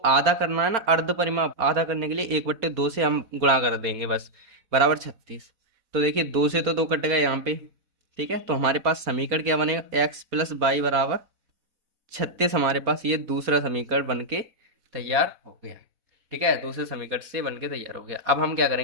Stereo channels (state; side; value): late; left; 4.1 ms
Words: करना है ना, अर्ध परिमाप आधा करने के लिए 1/2 से हम गुणा कर देंगे बस, बराबर 36। तो देखिए 2 से तो 2 कट गए यहाँ पे। ठीक है, तो हमारे पास समीकरण क्या बनेगा, x प्लस बाई बराबर 36। हमारे पास ये दूसरा समीकरण बन के तैयार हो गया। ठीक है, दूसरे समीकरण से बन के तैयार हो गया। अब हम क्या